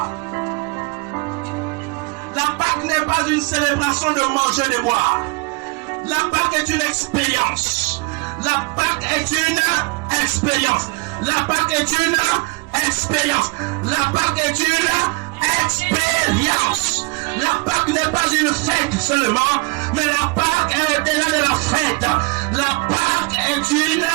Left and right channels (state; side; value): quieter; left; 28.0 dB